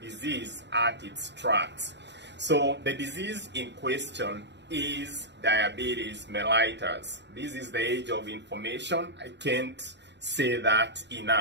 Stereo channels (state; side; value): late; left; 0.51 ms